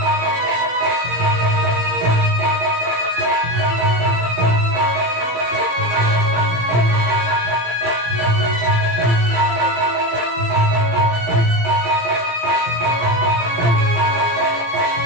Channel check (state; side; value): late; left; 17 ms